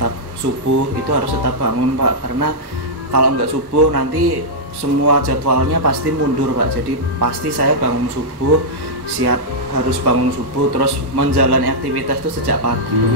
subuh, itu harus tetap bangun pak, karena kalau nggak subuh nanti semua jadwalnya pasti mundur pak. Jadi pasti saya bangun subuh, harus bangun subuh, terus menjalani aktivitas itu sejak pagi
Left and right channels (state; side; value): late; left; 1.2 ms